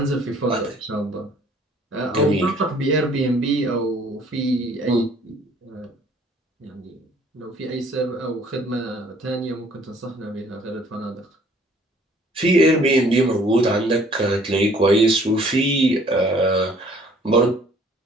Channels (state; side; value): normal; both; correlation 0.57